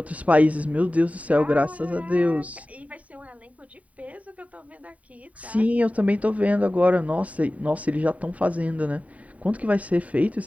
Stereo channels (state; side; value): late; left; 0.069 ms